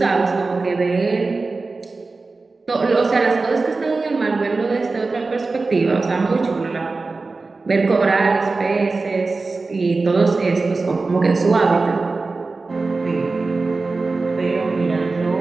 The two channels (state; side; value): quieter; left; 3.8 dB